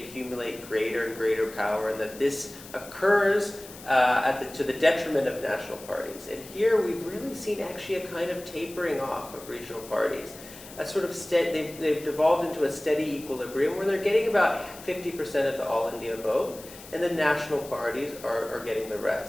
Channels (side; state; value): left; noise; hiss, 17 dB below the sound